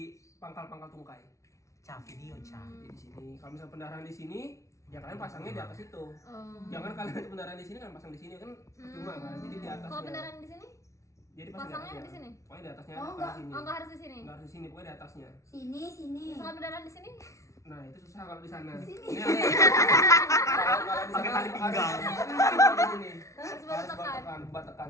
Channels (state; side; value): late; right; 0.15 ms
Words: pangkal-pangkal tungkai. Video Jadi di sini. Kalau misalnya pendarahan di sini, ya kalian pasangnya di atas itu. Jangan kalian itu pendarahan di sini kan pasang di sini kan percuma kan. Jadi di atasnya. Kalau pendarahan di sini? Jadi pasangnya di sini. Pokoknya di atasnya. Oh, enggak. Di sini. Oh, enggak harus di sini. Enggak harus di sini, pokoknya di atasnya. Sini. Kalau pendarahan di sini? Nah, itu susah kalau di sana. Sini. Ini kalau di sana tali pinggang. Di sini. Harus baru tekan. Buat tekan